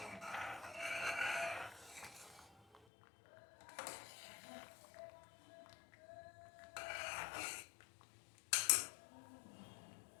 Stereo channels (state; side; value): drops out; right; at 2.9 s